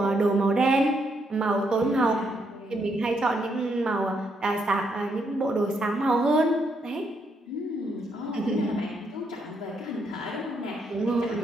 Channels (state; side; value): normal; both; correlation 0.76